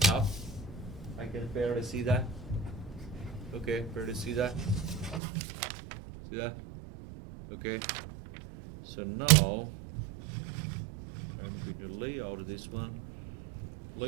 I can barely see that. Okay, barely see that. See that? Okay. So now I'm going to lay out this one.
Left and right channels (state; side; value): drops out; left; at 5.2 s